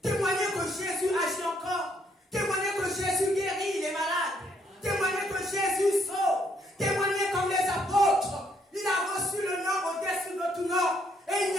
Témoigner que Jésus agit encore. Témoigner que Jésus guérit les malades. Témoigner que Jésus sauve. Témoigner comme les apôtres. Il a reçu le nom au-dessus de tout nom. Et il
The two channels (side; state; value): both; normal; correlation 0.70